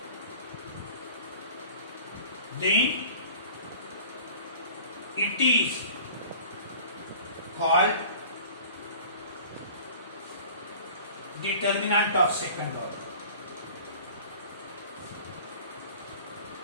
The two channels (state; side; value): inverted; both; correlation -0.44